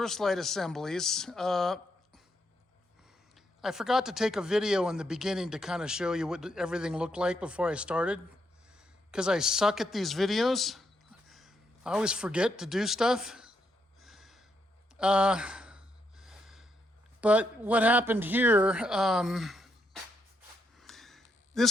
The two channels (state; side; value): normal; both; correlation 0.78